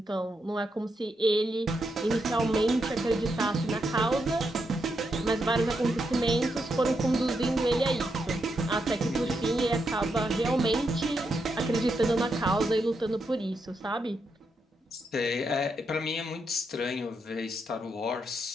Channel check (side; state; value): both; normal; correlation 0.82